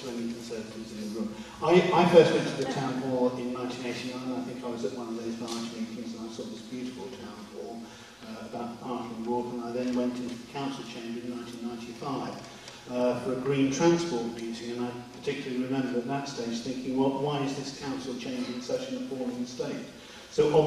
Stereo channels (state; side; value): identical; both; correlation 1.00